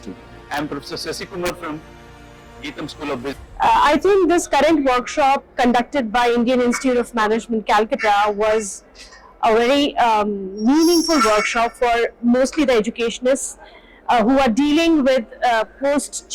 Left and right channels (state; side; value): identical; both; correlation 1.00